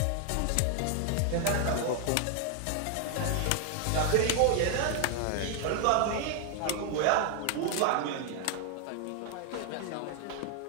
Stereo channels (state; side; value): different; both; correlation 0.00